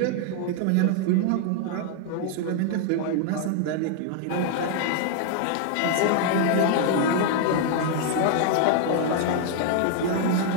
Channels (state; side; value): different; both; correlation 0.00